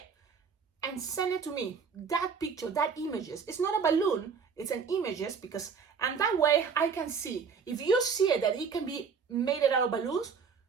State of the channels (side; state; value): left; quieter; 6.0 dB